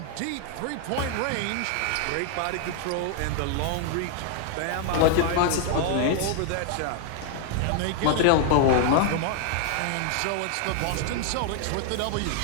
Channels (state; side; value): different; both; correlation 0.00